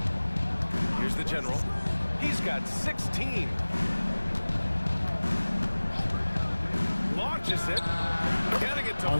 Here's the general. He's got 16. Launches it. Getting it to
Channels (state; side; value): inverted; both; correlation -1.00